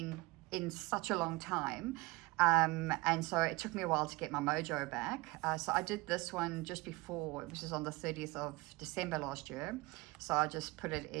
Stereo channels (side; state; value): left; quieter; 23.0 dB